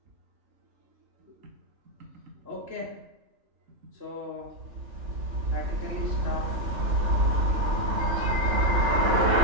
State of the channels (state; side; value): late; left; 3.4 ms